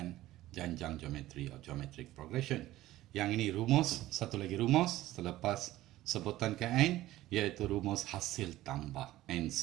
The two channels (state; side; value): quieter; left; 15.7 dB